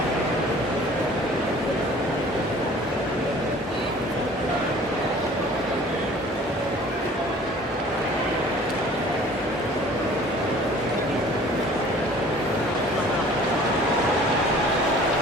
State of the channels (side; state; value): both; normal; correlation 0.49